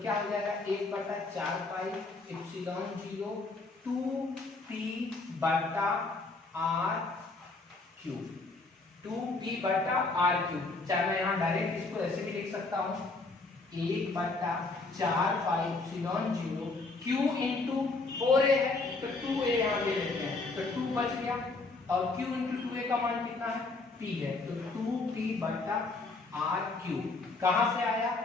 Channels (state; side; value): quieter; right; 3.6 dB